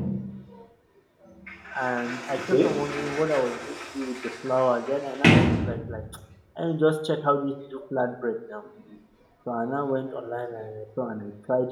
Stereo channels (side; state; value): both; identical; correlation 1.00